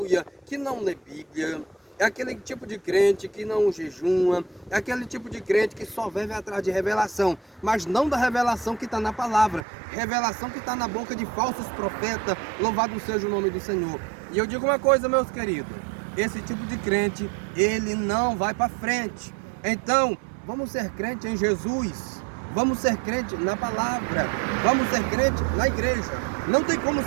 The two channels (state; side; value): drops out; left; at 9.7 s